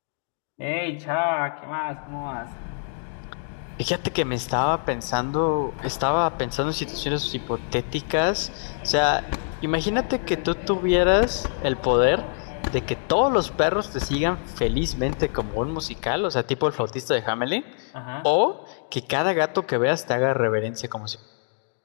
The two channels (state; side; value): silent; right; digital silence